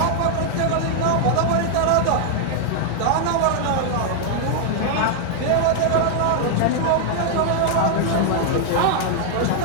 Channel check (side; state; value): both; different; correlation 0.00